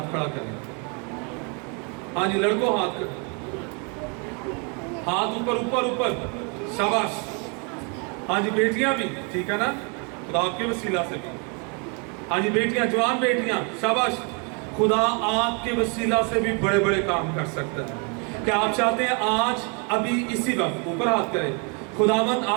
खड़ा करें। हाँ जी, लड़कों हाथ कर, हाथ ऊपर ऊपर ऊपर, शाबाश। हाँ जी, बेटियां भी, ठीक है ना, खुदा आपके वसीला से भी। हाँ जी बेटियां, जवान बेटियां, शाबाश। खुदा आपके वसीला से भी बड़े बड़े काम कर सकता है। क्या आप चाहते हैं आज अभी इसी वक्त ऊपर हाथ करें, खुदावंद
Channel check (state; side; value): quieter; left; 35.0 dB